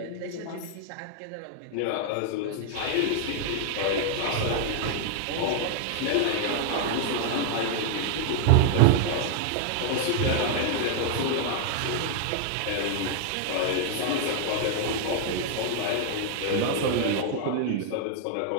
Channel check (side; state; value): both; different; correlation 0.00